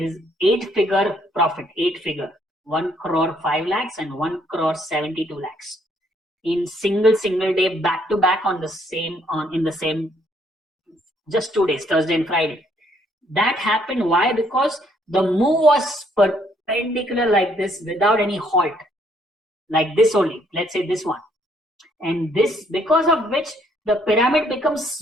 is 8-figure profit, 8-figure, 1 crore 5 lakhs and 1 crore 72 lakhs in single day, back to back on the same, in the same, just 2 days, Thursday and Friday. That happened. Why? Because the move was perpendicular like this without any halt, like this only. Let's say this one. And this, because of which the pyramid becomes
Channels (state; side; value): normal; both; correlation 0.67